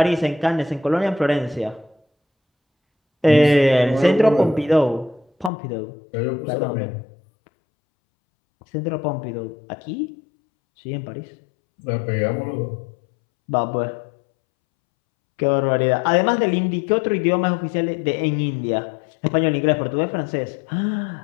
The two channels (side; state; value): right; drops out; at 5.5 s